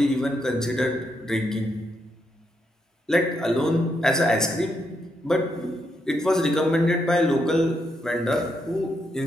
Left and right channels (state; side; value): normal; both; correlation 0.79